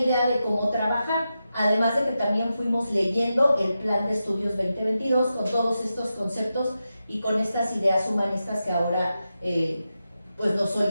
de cómo trabajar, además de que también fuimos leyendo el Plan de Estudios 2022 con todos estos conceptos y con estas ideas humanistas que ahora pues nos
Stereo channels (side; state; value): both; inverted; correlation -0.90